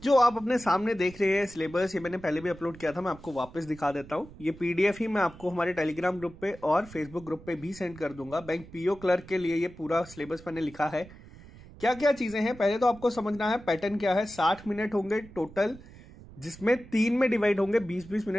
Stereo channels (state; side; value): noise; right; rumble, 19 dB below the sound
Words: जो आप अपने सामने देख रहे हैं सिलेबस, ये मैंने पहले भी अपलोड किया था, मैं आपको वापस दिखा देता हूँ। ये पीडीएफ ही मैं आपको हमारे टेलीग्राम ग्रुप पे और फेसबुक ग्रुप पे भी सेंड कर दूंगा। बैंक पीओ क्लर्क के लिए ये पूरा सिलेबस मैंने लिखा है। क्या क्या चीजें हैं पहले तो आपको समझना है। पैटर्न क्या है, 60 मिनट होंगे टोटल, जिसमें 3 में डिवाइड होंगे। 20-20